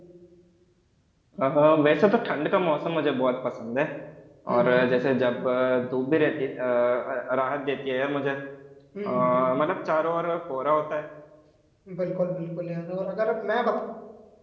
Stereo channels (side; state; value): both; identical; correlation 1.00